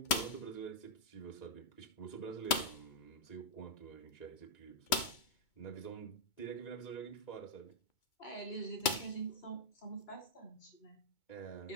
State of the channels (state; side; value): late; right; 2.2 ms